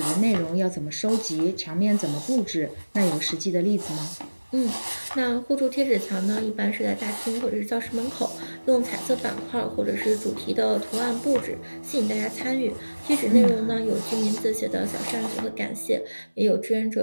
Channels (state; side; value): inverted; both; correlation -1.00